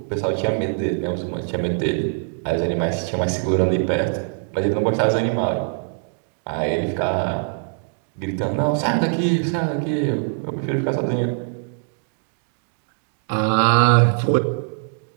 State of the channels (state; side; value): silent; left; digital silence